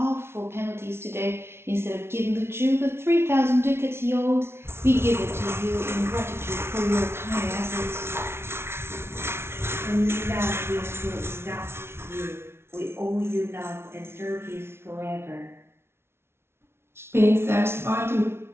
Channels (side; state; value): left; late; 0.12 ms